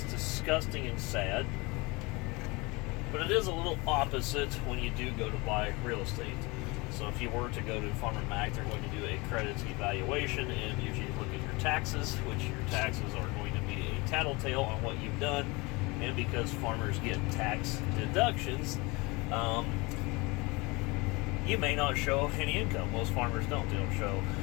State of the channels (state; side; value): quieter; right; 25.5 dB